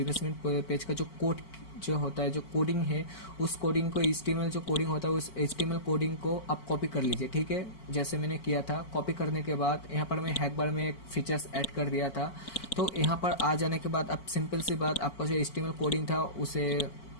पेज का जो कोड जो होता है, जो कोडिंग है, उस कोडिंग को HTML जो कोडिंग होता है उस HTML कोडिंग को आप कॉपी कर लीजिए। ठीक है, जैसे मैंने किया था। कॉपी करने के बाद यहाँ पर मैं हैक बार में एक फीचर्स ऐड कर दिया था। तो यहाँ पर आ जाने के बाद अब सिंपल सी बात, आपका जो HTML कोडिंग था उसे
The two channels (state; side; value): late; right; 4.5 ms